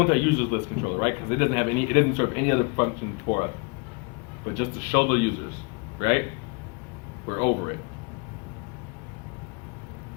our users list controller, right? Because it doesn't have any, it doesn't serve any other function for us, but just to show the users, right? We're over it.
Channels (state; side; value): quieter; right; 31.8 dB